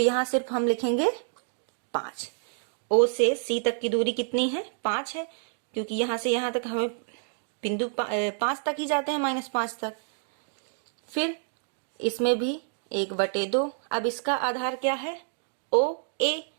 सिर्फ हम लिखेंगे 5। O से C तक की दूरी कितनी है, 5 है, क्योंकि यहां से यहां तक हमें बिंदु 5 तक ही जाते हैं, -5 तक। फिर इसमें भी 1/2। अब इसका आधार क्या है, OA।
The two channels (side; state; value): left; silent; digital silence